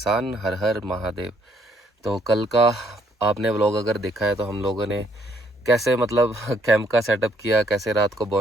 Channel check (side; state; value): both; normal; correlation 0.67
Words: हर हर महादेव। तो कल का आपने व्लॉग अगर देखा है तो हम लोगों ने कैसे मतलब कैंप का सेटअप किया, कैसे रात को